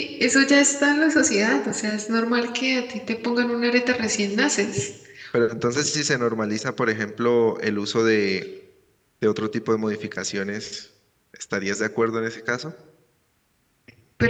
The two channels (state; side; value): identical; both; correlation 1.00